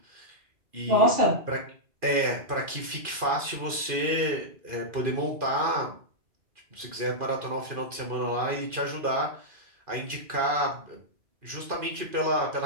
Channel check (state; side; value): late; left; 2.4 ms